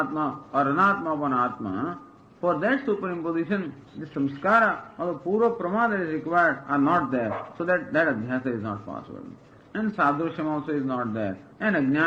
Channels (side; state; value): both; identical; correlation 1.00